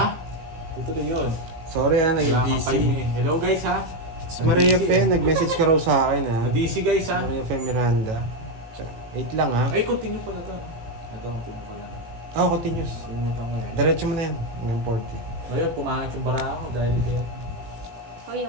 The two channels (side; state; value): left; late; 18 ms